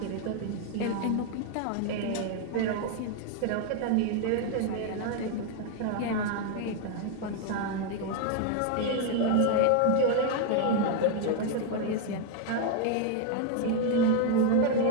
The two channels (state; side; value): different; both; correlation 0.01